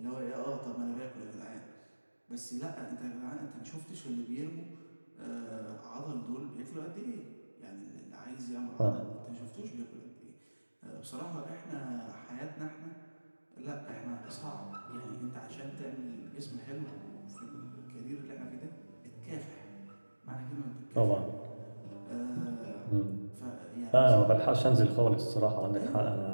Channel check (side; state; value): both; inverted; correlation -1.00